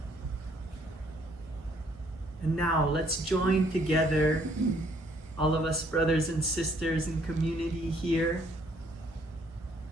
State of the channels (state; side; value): normal; both; correlation 0.65